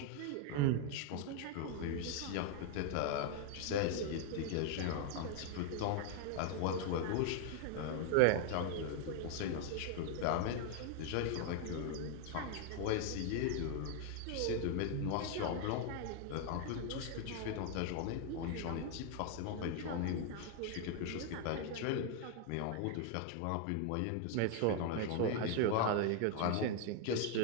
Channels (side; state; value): both; different; correlation 0.00